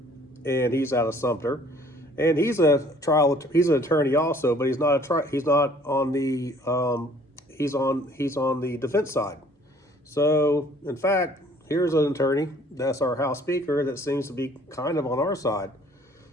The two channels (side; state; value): both; normal; correlation 0.56